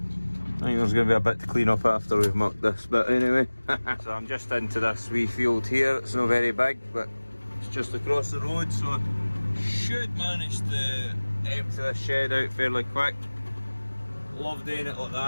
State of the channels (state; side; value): inverted; both; correlation -1.00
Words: I think there's going to be a bit to clean up after we've mucked this bit anyway. So I'm just into this wee field here. It's not very big, but it's just across the road, so I should manage to empty this shed out fairly quick. Love doing it like